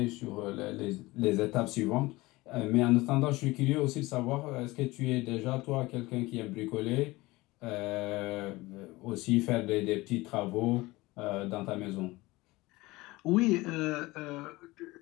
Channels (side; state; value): right; quieter; 20.7 dB